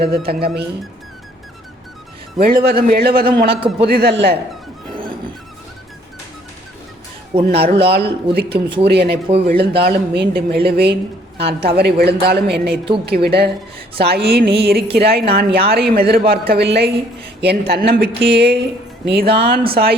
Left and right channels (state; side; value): normal; both; correlation 0.62